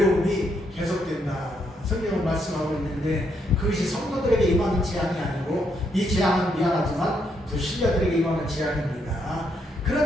계속된다. 성경은 말씀하고 있는데 그것이 성도들에게 임하는 재앙이 아니고 이 재앙은 미안하지만 불신자들에게 임하는 재앙입니다.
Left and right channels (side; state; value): both; normal; correlation 0.76